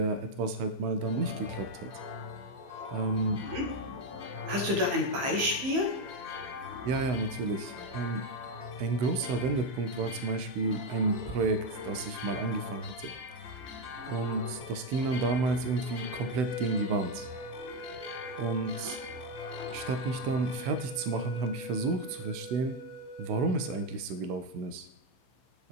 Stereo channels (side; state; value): left; late; 15 ms